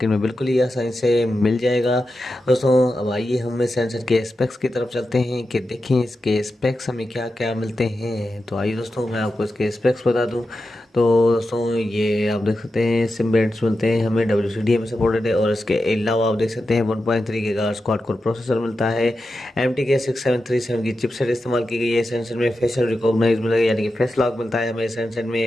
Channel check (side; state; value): both; normal; correlation 0.90